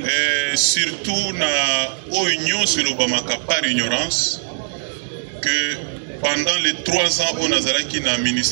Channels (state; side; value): silent; left; digital silence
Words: surtout na union sur l'Obamaka par ignorance que pendant les 3 ans au Nazaraki na